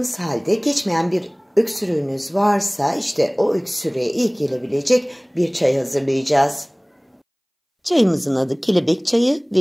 halde geçmeyen bir öksürüğünüz varsa işte o öksürüğe iyi gelebilecek bir çay hazırlayacağız. Çayımızın adı kelebek çayı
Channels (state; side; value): identical; both; correlation 1.00